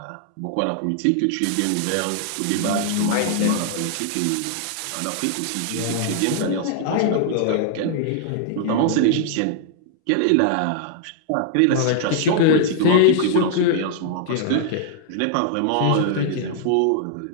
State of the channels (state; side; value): different; both; correlation 0.00